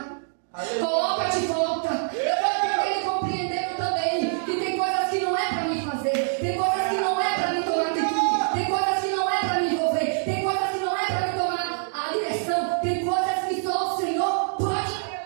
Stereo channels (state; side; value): silent; left; digital silence